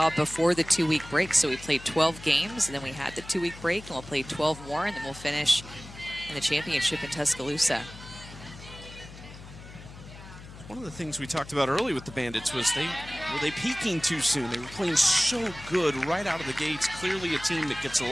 before the 2-week break. So we played 12 games, and then we had the 2-week break, and we'll play 12 more, and then we'll finish in the championship in Tuscaloosa. One of the things we talked about early with the Bandits was were they peaking too soon? They were playing so good right out of the gates. Clearly a team that gets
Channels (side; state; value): left; noise; hum, 16 dB below the sound